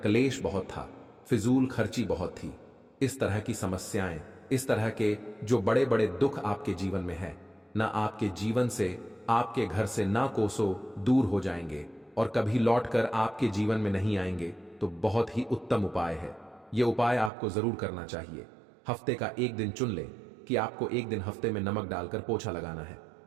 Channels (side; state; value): left; drops out; at 17.3 s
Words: बहुत था, फिजूल खर्ची बहुत थी, इस तरह की समस्याएं, इस तरह के जो बड़े बड़े दुख आपके जीवन में है, ना आपके जीवन से, आपके घर से ना कोसों दूर हो जाएंगे और कभी लौटकर आपके जीवन में नहीं आएंगे। तो बहुत ही उत्तम उपाय है। यह उपाय आपको जरूर करना चाहिए। हफ्ते का एक दिन चुन लें कि आपको एक दिन हफ्ते में नमक डालकर पोछा लगाना है,